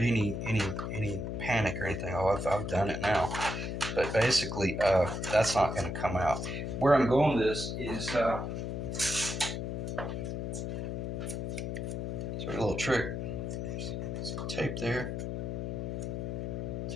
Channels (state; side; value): noise; left; hum, 3 dB below the sound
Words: any panic or anything. Oh, I've done it now. But basically, that's not going to come out. Where I'm going with this is it's a little trick. Some tape there.